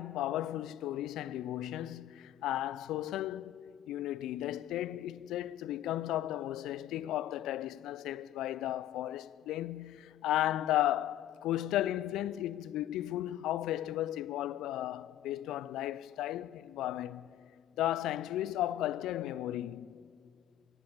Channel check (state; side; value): quieter; right; 13.0 dB